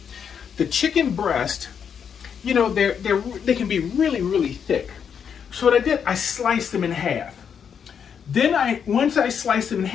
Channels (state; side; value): quieter; right; 7.4 dB